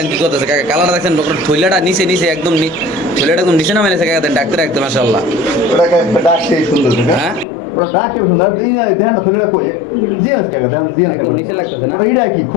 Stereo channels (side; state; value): right; drops out; at 7.5 s